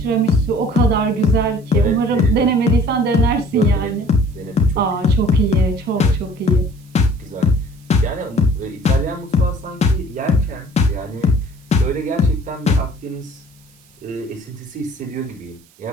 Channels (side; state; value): right; noise; hiss, 30 dB below the sound